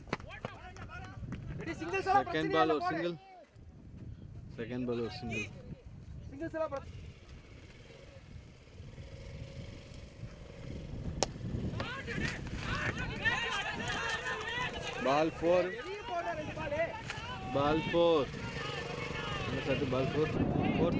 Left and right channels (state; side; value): identical; both; correlation 1.00